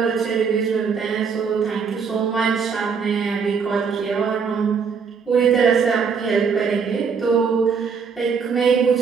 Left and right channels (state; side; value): quieter; left; 5.9 dB